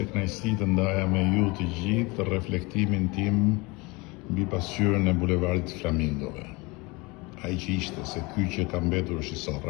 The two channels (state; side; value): quieter; right; 25.4 dB